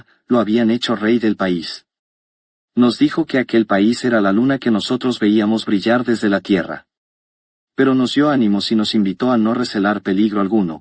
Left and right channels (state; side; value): identical; both; correlation 1.00